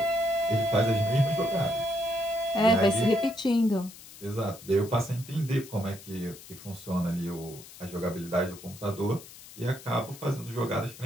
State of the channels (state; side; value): noise; left; hiss, 18 dB below the sound